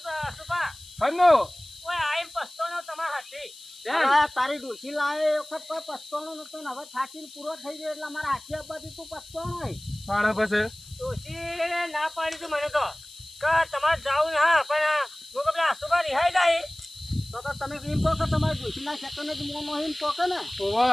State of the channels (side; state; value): left; noise; hiss, 19 dB below the sound